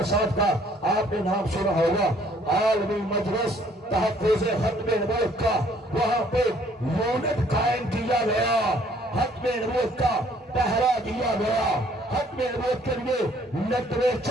صاحب کا آپ نے نام سنا ہوگا, عالمی مجلس تحفظ ختم نبوت کا وہاں پہ یونٹ قائم کیا گیا, ختم نبوت کا پہرا دیا گیا, ختم نبوت کے لیے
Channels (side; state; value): both; normal; correlation 0.61